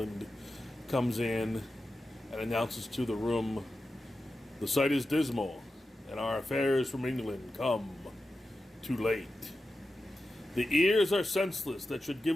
comes in and announces to the room, "The sight is dismal, and our affairs from England come too late. The ears are senseless that should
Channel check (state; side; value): normal; both; correlation 0.92